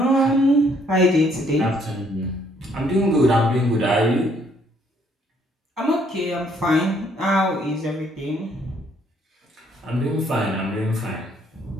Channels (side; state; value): both; normal; correlation 0.66